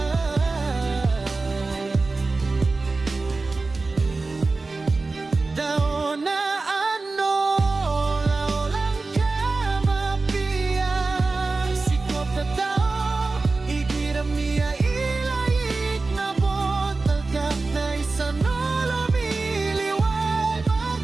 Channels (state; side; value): quieter; left; 3.6 dB